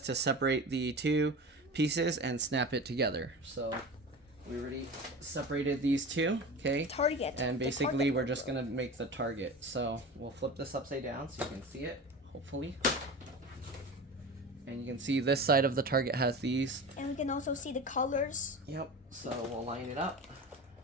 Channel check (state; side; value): normal; both; correlation 0.31